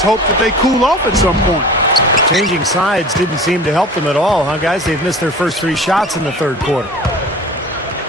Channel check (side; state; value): both; normal; correlation 0.40